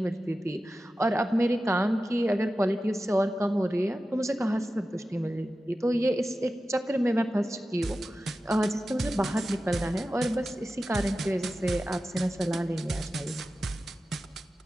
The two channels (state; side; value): normal; both; correlation 0.94